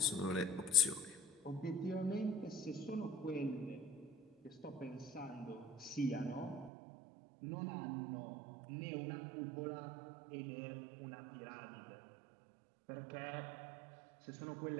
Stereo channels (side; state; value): left; drops out; at 6.7 s